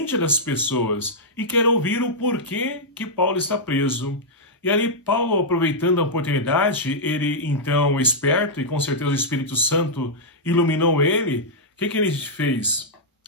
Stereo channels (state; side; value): normal; both; correlation -0.08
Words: das pessoas, e quer ouvir o porquê que Paulo está preso. E ali Paulo, aproveitando a oportunidade, ele então, esperto, e com certeza o Espírito Santo iluminou ele, o que ele fez?